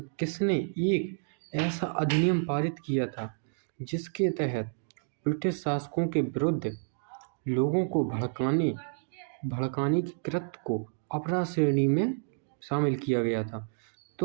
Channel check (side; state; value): left; silent; digital silence